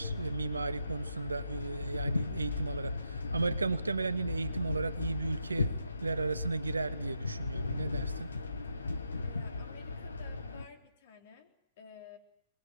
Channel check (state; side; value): inverted; both; correlation -0.83